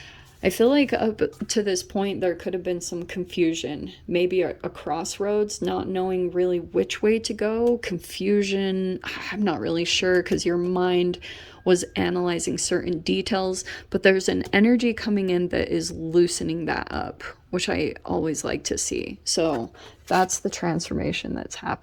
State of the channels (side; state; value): both; identical; correlation 1.00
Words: I feel like up to this point, there could have been some confusion, maybe a crossroads, not knowing really which way to go, confusion. I'm not really sure because your mind was analyzing certain details, but there's an energy coming in that is loosening that up, which I always like to see. So that's the transformation that's